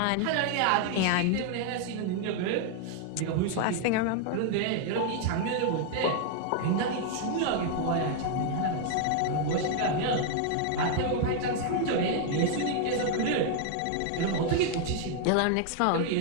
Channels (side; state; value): both; different; correlation 0.00